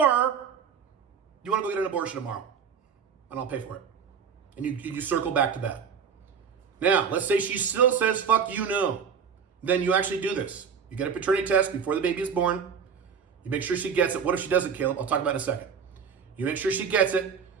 you want to go get an abortion tomorrow, and I'll pay for it. And you circle back to that. Now, let's say she still says, fuck you, no. Then you actually do this. You get a paternity test before the baby is born. You make sure she gets it. What if she doesn't, Caleb? I'll talk about it in a second. You make sure she gets it.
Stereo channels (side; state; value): left; quieter; 6.7 dB